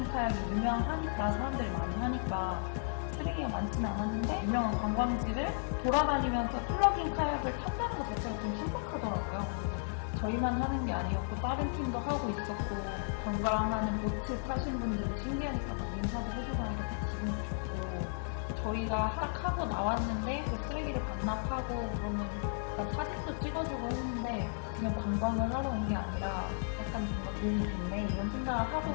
카약이 유명하니까 사람들이 많이 하니까 쓰레기가 많지는 않았는데 유명한 관광지를 돌아다니면서 플러깅 카약을 탄다는 것 자체가 좀 신박하더라고요. 저희만 하는 게 아니었고 다른 팀도 하고 있었고 관광하는 보트 타신 분들이 신기하니까 막 인사도 해주고 하니까 기분이 좋고 저희가 딱 하고 나왔는데 그 쓰레기를 반납하고 그러면 사진도 찍어주고 했는데 그냥 관광을 하러 온 게 아니라 약간 뭔가 도움이 됐네 이런 생각을 하고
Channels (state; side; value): silent; right; digital silence